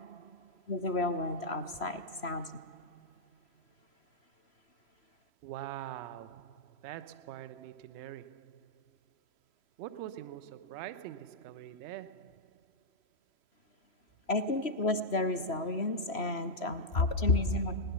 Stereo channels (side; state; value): right; late; 3.0 ms